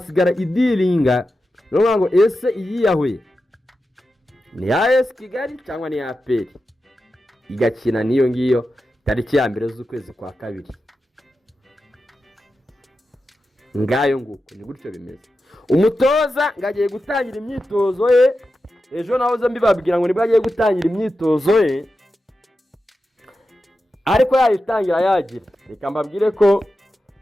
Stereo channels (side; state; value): both; normal; correlation 0.91